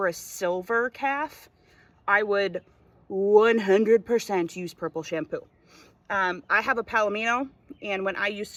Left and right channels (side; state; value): both; identical; correlation 1.00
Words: a silver calf, I would 100% use purple shampoo. I have a Palomino, and when I used